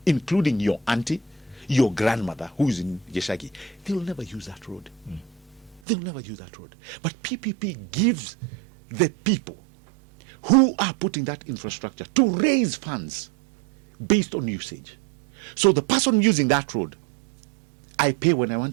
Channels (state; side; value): drops out; left; at 5.8 s